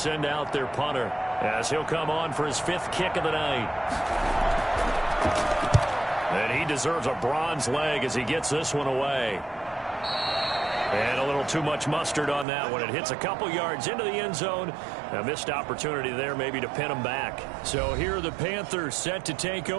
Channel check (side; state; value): left; drops out; at 12.5 s